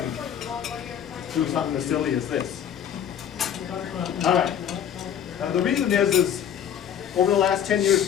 do something as silly as this? All right. The reason is over the last 10 years,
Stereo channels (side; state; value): right; quieter; 9.1 dB